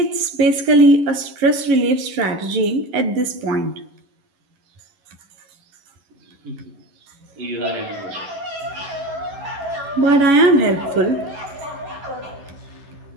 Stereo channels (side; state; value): left; late; 11 ms